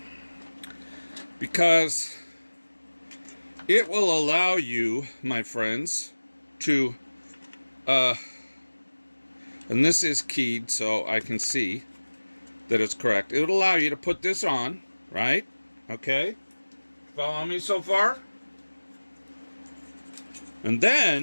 Because it will allow you, my friends, to, and this is keyed so I can see that it's correct. It would allow you to put this on, right? Okay? Follow me so far? And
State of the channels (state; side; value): inverted; both; correlation -1.00